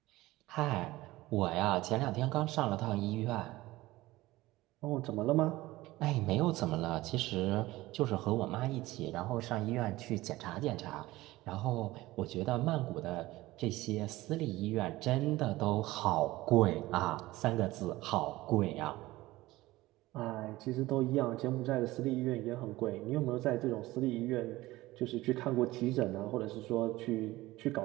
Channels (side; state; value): left; quieter; 18.3 dB